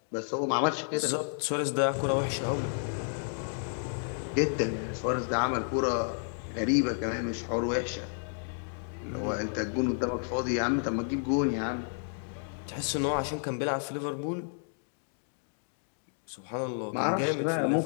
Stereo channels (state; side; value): silent; right; digital silence